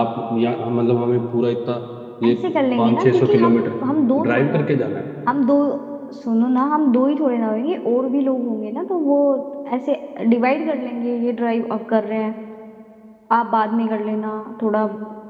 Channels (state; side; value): identical; both; correlation 1.00